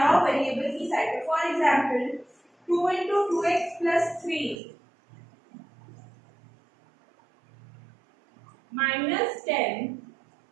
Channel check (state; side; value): drops out; left; at 4.6 s